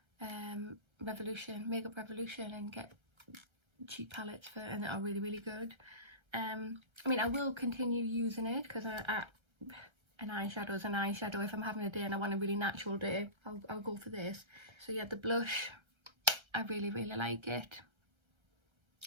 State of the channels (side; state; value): left; late; 1.3 ms